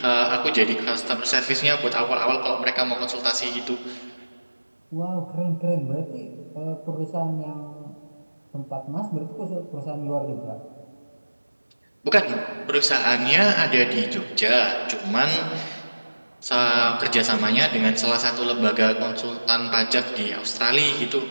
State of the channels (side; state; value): both; inverted; correlation -1.00